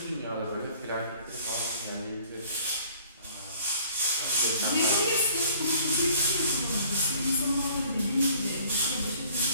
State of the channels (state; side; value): inverted; both; correlation -0.55